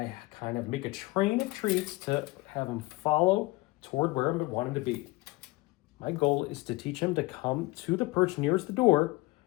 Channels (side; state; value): right; quieter; 21.7 dB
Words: kind of make a train of treats to have him follow toward where I want him to be. My goal is to teach him to come to the perch nearest the door